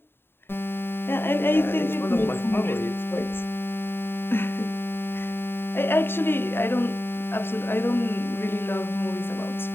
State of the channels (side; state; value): right; late; 0.11 ms